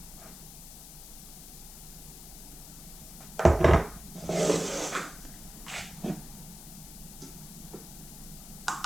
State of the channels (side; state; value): left; noise; hiss, 14 dB below the sound